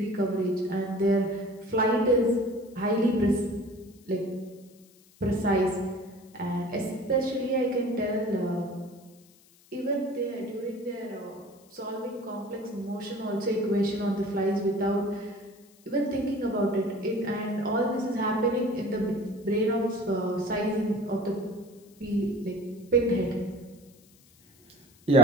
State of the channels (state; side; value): noise; left; hiss, 28 dB below the sound